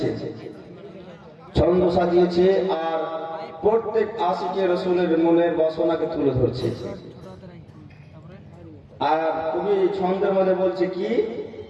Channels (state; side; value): identical; both; correlation 1.00